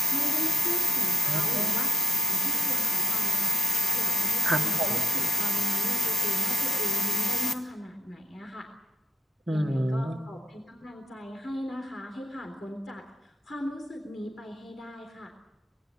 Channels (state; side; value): normal; both; correlation 0.79